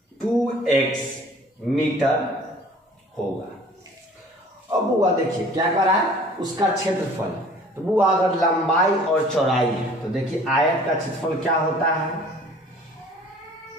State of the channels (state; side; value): normal; both; correlation 0.50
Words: 2x मीटर होगा। अब बुआ देखिए क्या कर रहा है, उसका क्षेत्रफल। तो बुआ अगर लंबाई और चौड़ाई है तो देखिए आयत का क्षेत्रफल क्या होता है,